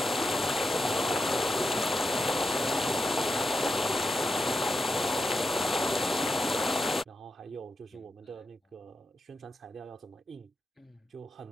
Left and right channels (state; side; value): normal; both; correlation 0.87